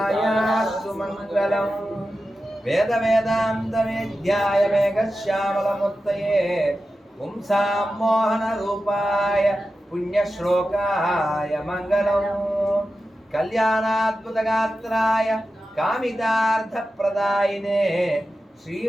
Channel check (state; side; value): normal; both; correlation 0.92